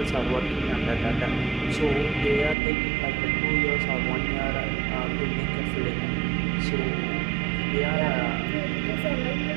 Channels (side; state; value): left; drops out; at 2.6 s